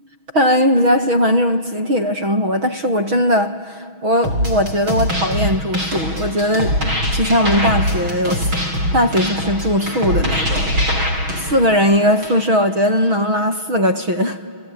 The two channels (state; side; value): late; left; 6.2 ms